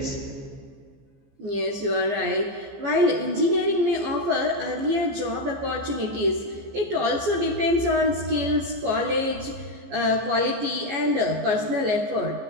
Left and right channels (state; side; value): late; left; 15 ms